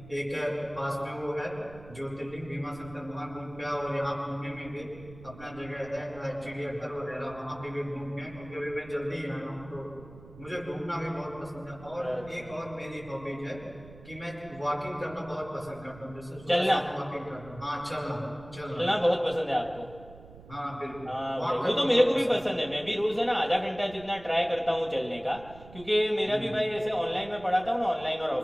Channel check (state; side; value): noise; right; rumble, 18 dB below the sound